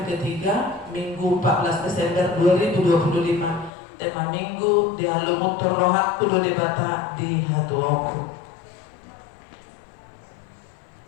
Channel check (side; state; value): right; drops out; at 3.7 s